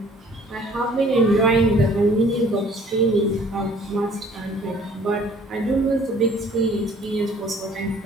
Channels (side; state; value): both; normal; correlation 0.55